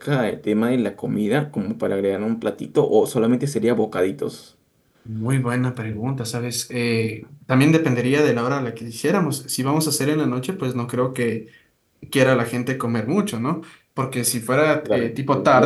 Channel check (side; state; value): both; identical; correlation 1.00